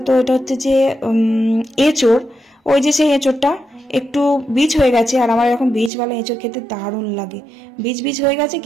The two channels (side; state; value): left; drops out; at 5.9 s